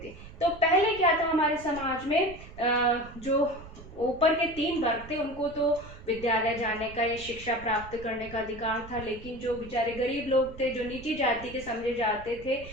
थे। तो पहले क्या था हमारे समाज में, जो ऊपर के 3 वर्ग थे उनको तो विद्यालय जाने का या शिक्षा प्राप्त करने का अधिकार था, लेकिन जो बेचारे गरीब लोग थे, जो नीची जाति के समझे जाते थे,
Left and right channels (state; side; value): noise; right; rumble, 16 dB below the sound